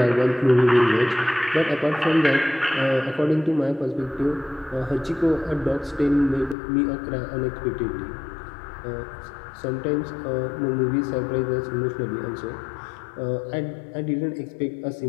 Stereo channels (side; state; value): right; drops out; at 6.6 s